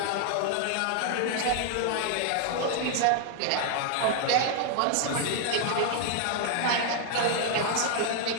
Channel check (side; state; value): both; different; correlation 0.00